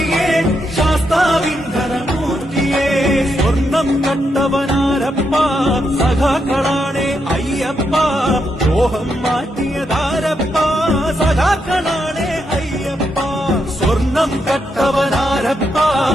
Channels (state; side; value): normal; both; correlation 0.81